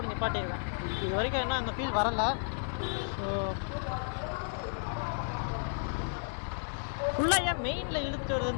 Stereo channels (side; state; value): right; silent; digital silence